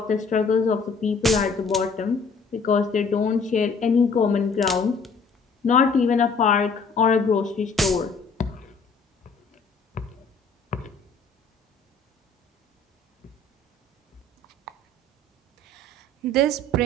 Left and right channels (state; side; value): quieter; right; 3.8 dB